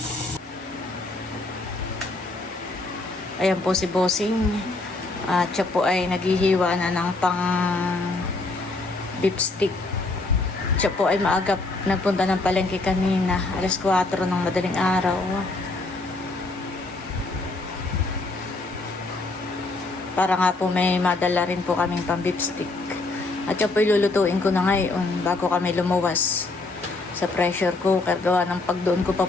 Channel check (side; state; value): right; quieter; 3.2 dB